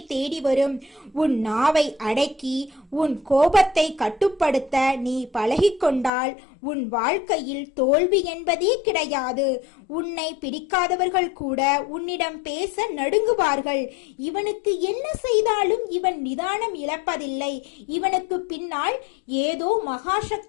தேடி வரும். உன் நாவை அடக்கி உன் கோபத்தை கட்டுப்படுத்த நீ பழகிக்கொண்டால் உன் வாழ்க்கையில் தோல்வி என்பதே கிடையாது. உன்னை பிடிக்காதவர்கள் கூட உன்னிடம் பேச நடுங்குவார்கள். இவனுக்கு என்ன செய்தாலும் இவன் நிதானம் இழப்பதில்லை, இவனுக்கு பின்னால் ஏதோ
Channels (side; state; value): right; drops out; at 6.1 s